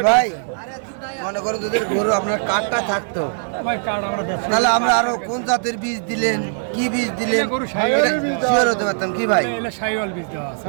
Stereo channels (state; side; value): silent; left; digital silence